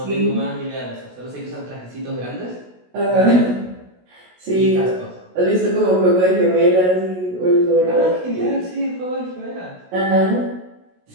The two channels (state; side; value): late; left; 16 ms